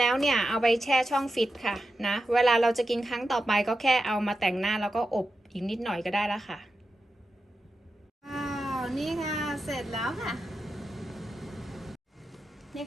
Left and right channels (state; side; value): normal; both; correlation 0.90